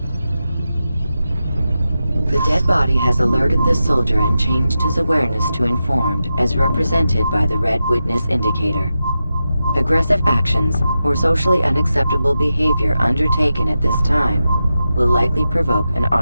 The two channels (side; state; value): both; inverted; correlation -0.90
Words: The dead body has alerted the soldier and changed his awareness to informed, as represented by the red witness indicator. Aggressive actions or socially unacceptable behavior undertaken at this time will likely provoke an